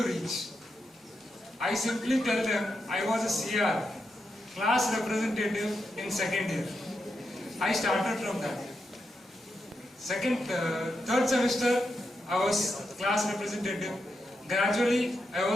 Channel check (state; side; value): normal; both; correlation 0.85